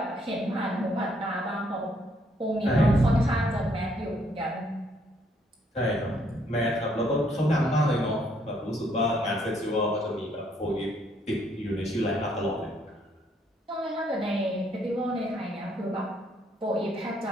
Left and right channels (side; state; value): both; normal; correlation 0.69